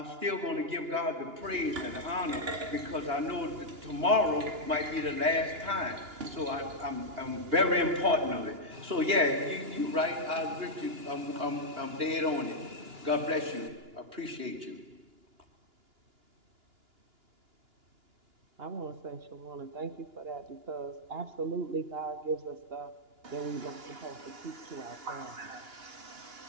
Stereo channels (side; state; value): left; late; 2.9 ms